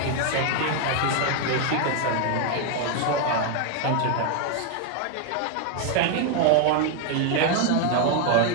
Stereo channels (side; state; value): both; different; correlation 0.01